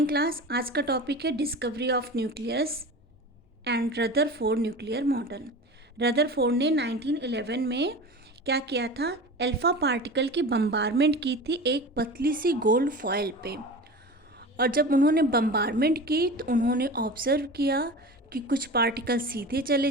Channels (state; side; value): normal; both; correlation 0.32